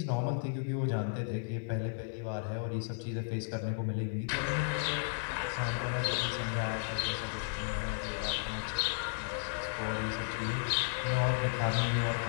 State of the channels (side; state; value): right; silent; digital silence